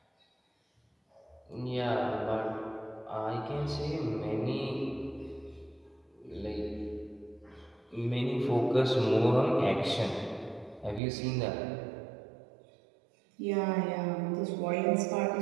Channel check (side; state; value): left; drops out; at 11.0 s